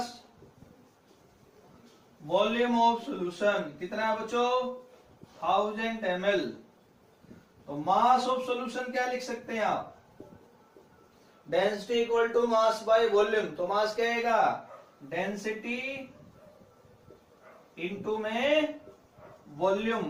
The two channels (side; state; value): both; identical; correlation 1.00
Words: वॉल्यूम ऑफ सोल्यूशन कितना है बच्चों, 1000 ml। तो मास ऑफ सॉल्यूशन क्या लिख सकते हैं आप, density equal to mass by volume. तो मास क्या आएगा, डेंसिटी इनटू में वॉल्यूम,